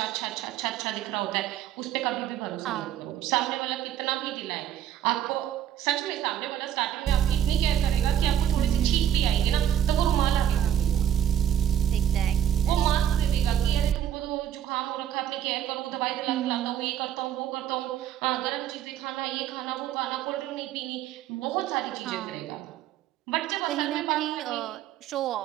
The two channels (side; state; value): left; quieter; 10.2 dB